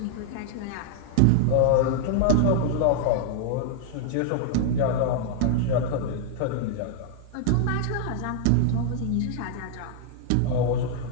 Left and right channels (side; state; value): both; different; correlation -0.01